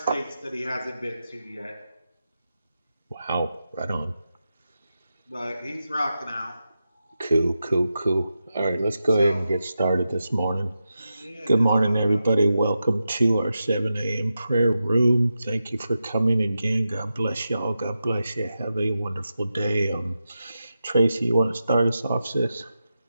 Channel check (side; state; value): both; inverted; correlation -0.89